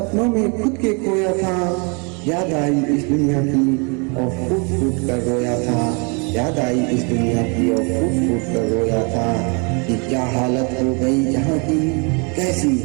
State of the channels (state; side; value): quieter; left; 34.2 dB